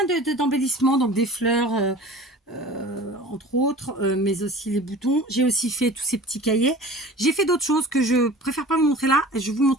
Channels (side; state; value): both; normal; correlation 0.41